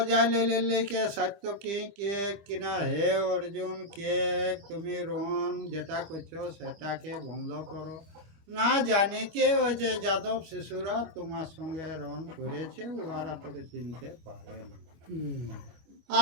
জানে লেকে সাত্যকী কে কিনা হে অর্জুন কে তুমি রণ যেটা করছো সেটাকে বন্ধ করো, না জানে কে ওই যে যাদব শিশুরা তোমার সঙ্গে রণ করেছে ওরা তোকে চিনতে পারে না।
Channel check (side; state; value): left; late; 25 ms